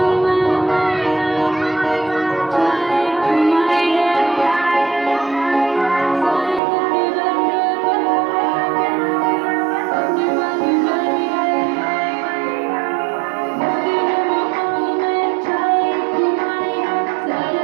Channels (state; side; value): drops out; left; at 6.6 s